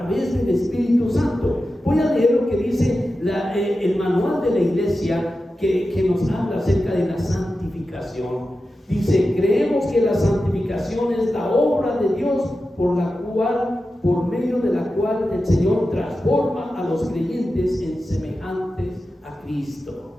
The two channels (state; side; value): normal; both; correlation 0.92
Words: del Espíritu Santo. Voy a leer lo que dice el manual de la iglesia que nos habla acerca de la santificación. Dice: creemos que la santificación es la obra de Dios por medio de la cual el Señor transforma a los creyentes en semejantes a